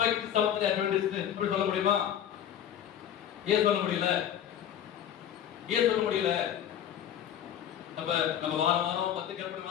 செவன்த் அட்வென்டிஸ்ட் அப்படி சொல்ல முடியுமா? ஏன் சொல்ல முடியல? ஏன் சொல்ல முடியல? அப்ப நம்ம வாரம் 10 கற்பனை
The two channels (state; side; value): quieter; right; 10.0 dB